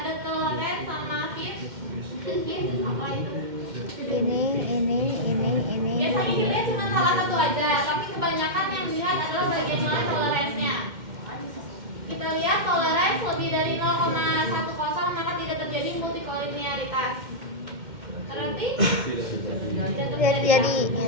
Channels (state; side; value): late; left; 2.1 ms